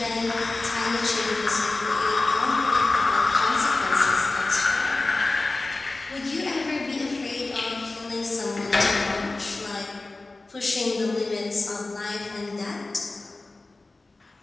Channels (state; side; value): quieter; right; 3.2 dB